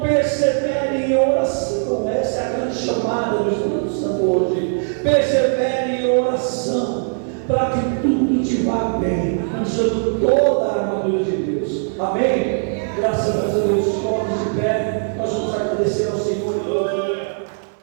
persevere em oração. Essa é a grande chamada do Espírito Santo hoje. Persevere em oração, para que tudo te vá bem, usando toda a armadura de Deus. Amém? Graças a Deus, todos de pé, nós vamos agradecer ao Senhor.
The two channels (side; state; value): left; silent; digital silence